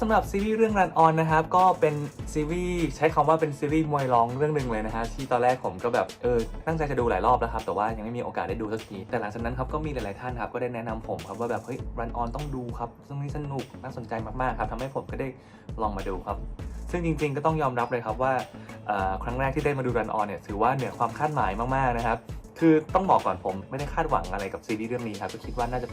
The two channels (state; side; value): identical; both; correlation 1.00